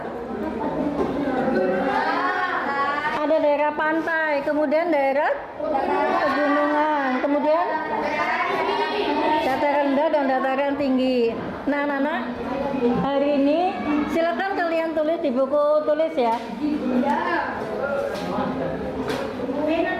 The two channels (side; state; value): both; identical; correlation 1.00